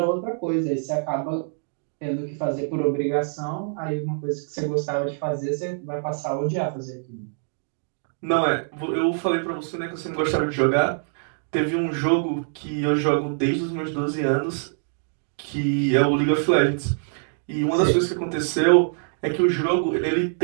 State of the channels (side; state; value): left; silent; digital silence